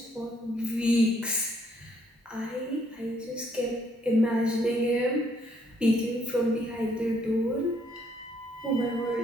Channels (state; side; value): normal; both; correlation 0.68